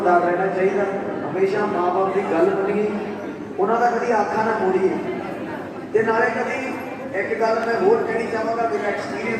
ਰਹਿਣਾ ਚਾਹੀਦਾ, ਹਮੇਸ਼ਾ ਮਾਂ ਬਾਪ ਦੀ ਗੱਲ ਮੰਨੀਏ, ਉਹਨਾਂ ਦਾ ਕਦੀ ਆਖਾ ਨਾ ਮੋੜੀਏ। ਤੇ ਨਾਲੇ ਕਦੀ ਇੱਕ ਗੱਲ ਮੈਂ ਹੋਰ ਕਹਿਣੀ ਚਾਹਾਂਗਾ, ਮੇਰਾ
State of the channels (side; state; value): both; identical; correlation 1.00